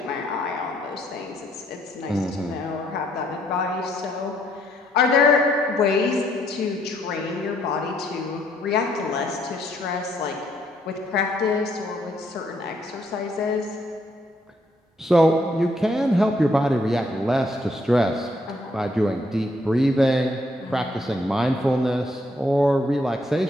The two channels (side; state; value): both; normal; correlation 0.71